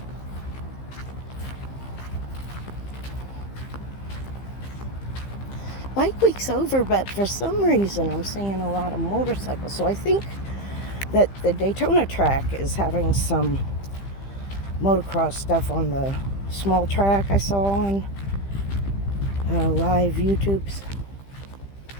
Bike week's over, but for some reason I'm seeing a lot of motorcycles. So I think that the Daytona track is having some motocross stuff on the small track I saw on live YouTubes.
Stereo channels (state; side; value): late; right; 15 ms